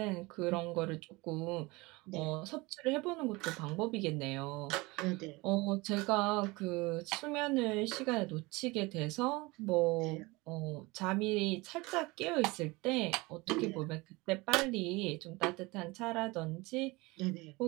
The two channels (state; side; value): quieter; left; 23.5 dB